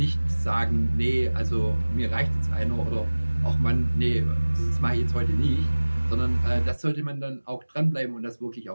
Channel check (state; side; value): inverted; both; correlation -1.00